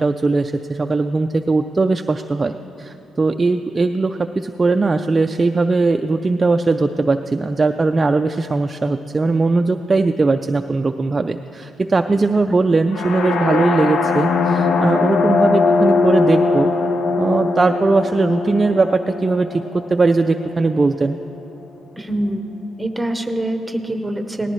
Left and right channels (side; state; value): both; normal; correlation 0.89